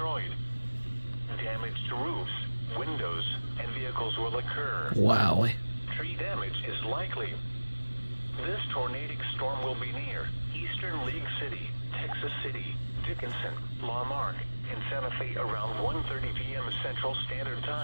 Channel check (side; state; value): both; inverted; correlation -1.00